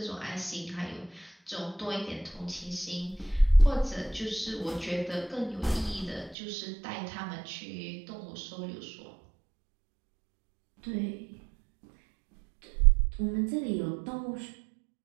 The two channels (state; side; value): drops out; left; at 6.4 s